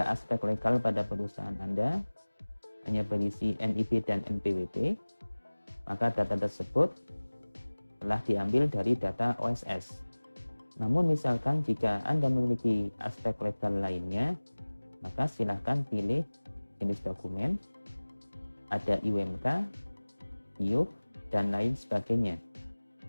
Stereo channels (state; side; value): inverted; both; correlation -1.00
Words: aspek legal pada perusahaan Anda hanya berisi NIP dan NPWP, maka data tersebut telah diambil dari data OSS. Namun misalkan jika Anda memiliki aspek legal lainnya, maka silahkan pilih jenis dokumen, ada IUMK, IUP, dan lain sebagainya.